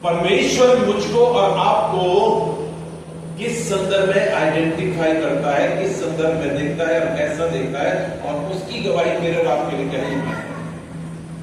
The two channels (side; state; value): both; identical; correlation 1.00